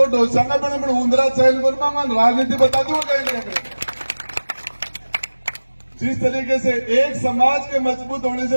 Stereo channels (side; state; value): both; inverted; correlation -1.00